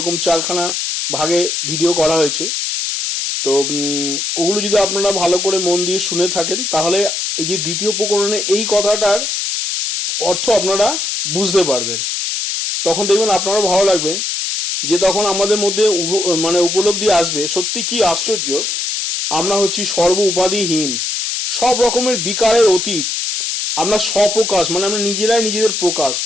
4খানা ভাগে ভিডিও করা হয়েছে। তো ওগুলো যদি আপনারা ভালো করে মন দিয়ে শুনে থাকেন, তাহলে এই যে দ্বিতীয় প্রকরণে এই কথাটার অর্থ আপনারা বুঝতে পারবেন। তখন দেখবেন আপনারও ভালো লাগবে, যে তখন আমাদের মধ্যে উপলব্ধি আসবে, সত্যি কি আশ্চর্য, আমরা হচ্ছি সর্ব উপাধিহীন, সব রকমের বিকারের অতীত, আমরা স্বপ্রকাশ আমরা নিজেরাই নিজেদের প্রকাশ,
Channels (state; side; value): noise; left; hiss, 2 dB below the sound